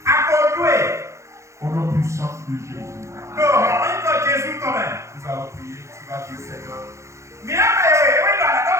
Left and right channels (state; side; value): late; left; 0.14 ms